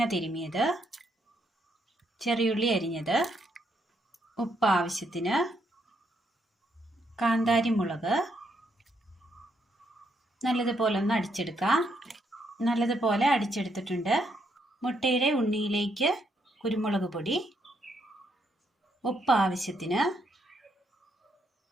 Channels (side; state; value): both; normal; correlation 0.76